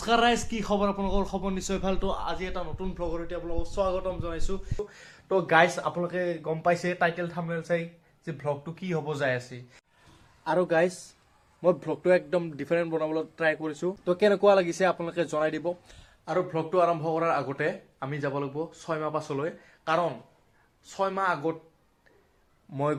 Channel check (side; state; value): both; identical; correlation 1.00